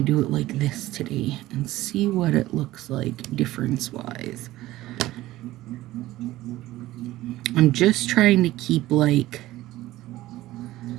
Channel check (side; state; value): left; quieter; 16.4 dB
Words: do it like this today and see what it looks like difference-wise. I'm just trying to keep like